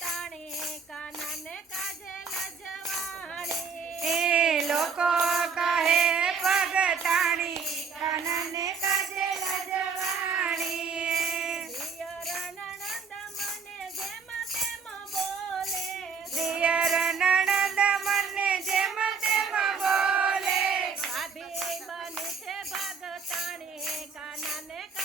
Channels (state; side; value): quieter; left; 5.6 dB